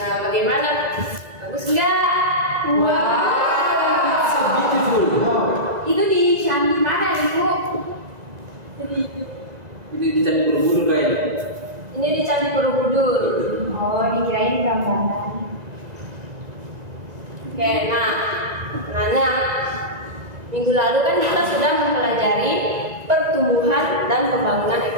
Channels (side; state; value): left; late; 1.9 ms